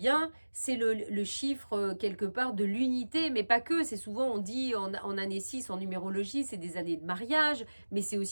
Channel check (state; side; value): inverted; both; correlation -1.00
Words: c'est le chiffre quelque part de l'unité, mais pas que. C'est souvent, on dit en année 6, en numérologie, c'est des années de mariage, mais c'est